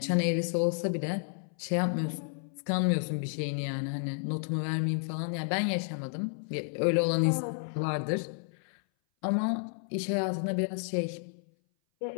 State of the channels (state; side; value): silent; right; 57 dB below the other